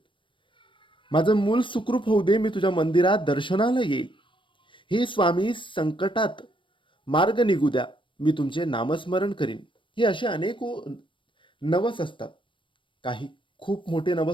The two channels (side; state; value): right; late; 0.24 ms